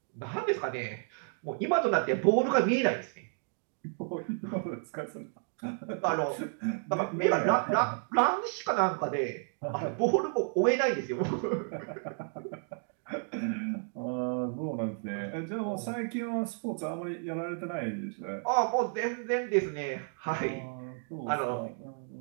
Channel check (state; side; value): silent; left; 56 dB below the other